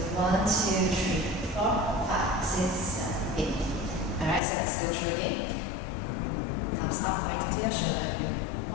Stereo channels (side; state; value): right; drops out; at 4.4 s